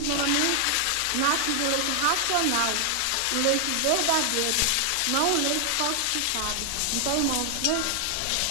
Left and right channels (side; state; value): both; different; correlation 0.00